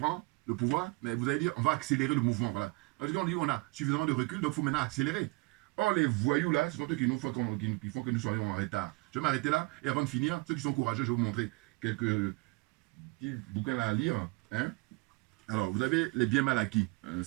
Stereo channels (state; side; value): quieter; left; 25.8 dB